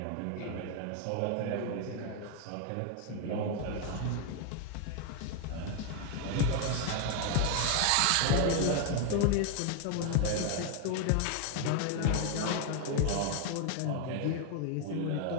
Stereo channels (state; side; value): different; both; correlation 0.00